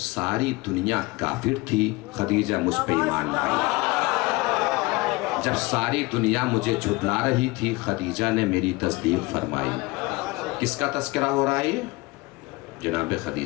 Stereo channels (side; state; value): right; quieter; 23.4 dB